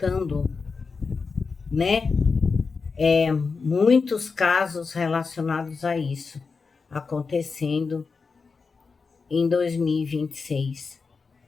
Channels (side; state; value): right; quieter; 4.8 dB